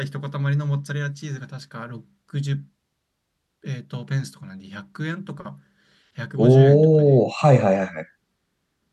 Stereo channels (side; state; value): both; identical; correlation 1.00